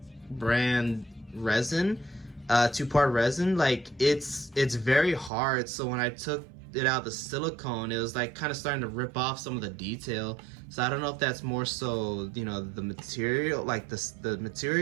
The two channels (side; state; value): left; drops out; at 5.3 s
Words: brand resin, 2-part resin, like it's very hard. So when I took it out the silicone, it was like kind of starting to rip off some of the detail. So I don't know if that's more so the material, like the